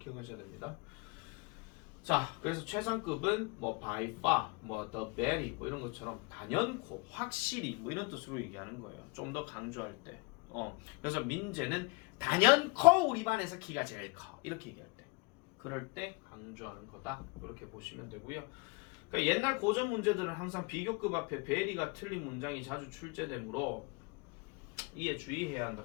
됩니다. 자, 그래서 최상급은 뭐 by far, 뭐 the very 뭐 이런 것처럼 단연코, 확실히 뭐 이런 뜻으로 얘기하는 거예요. 좀 더 강조할 때. 그래서 민재는 단연코 우리 반에서 키가 제일 커. 이렇게 얘기할 때. 그럴 때 강조하는 거다. 이렇게 보시면 되고요. 그러니까 옛날 고전 문제들은 항상 비교급 앞에 베리가 틀린 문장이 자주 출제되므로 이에 주의해야 한다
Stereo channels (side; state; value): right; quieter; 29.3 dB